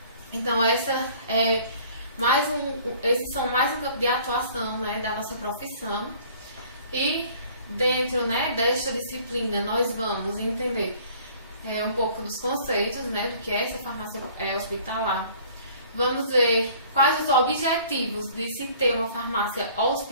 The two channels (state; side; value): inverted; both; correlation -0.53